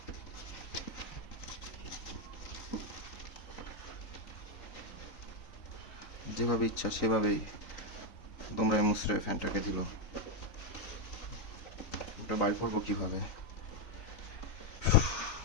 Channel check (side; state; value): right; late; 3.9 ms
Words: যেভাবে ইচ্ছা সেভাবেই তোমরা মুসরে ফ্যানটাকে দিল। ওটা বাইর করবো কিভাবে?